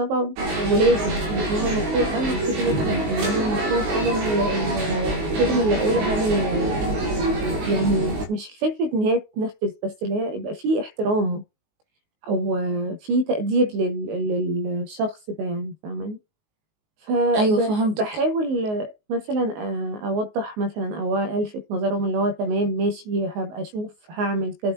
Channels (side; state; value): left; late; 19 ms